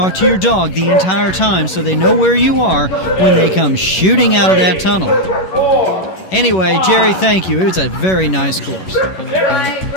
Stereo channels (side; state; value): right; late; 11 ms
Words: to your dog the entire time so they know where you are when they come shooting out of that tunnel. Anyway, Jerry, thank you. It was a very nice course. My